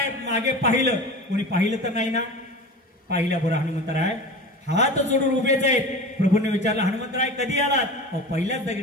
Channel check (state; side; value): normal; both; correlation 0.33